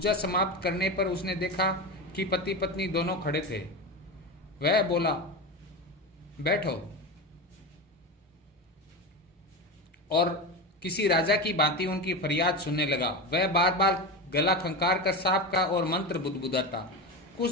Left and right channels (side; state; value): both; normal; correlation 0.21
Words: समाप्त करने पर उसने देखा कि पति पत्नी दोनों खड़े थे। वह बोला, बैठो, और किसी राजा की भांति उनकी फरियाद सुनने लगा। वह बार बार गला खंकार कर सांप का और मंत्र बुदबुदाता। कुछ